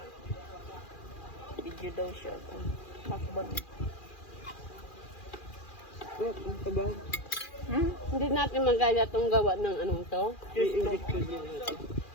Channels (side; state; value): right; late; 2.4 ms